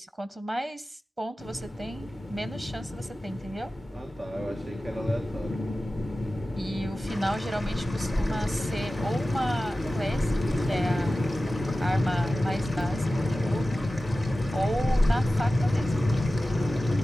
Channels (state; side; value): normal; both; correlation 0.95